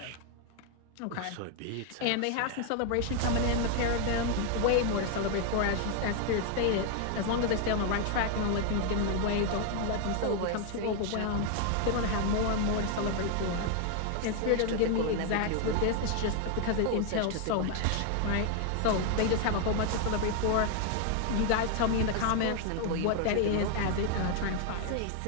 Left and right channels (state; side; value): different; both; correlation 0.00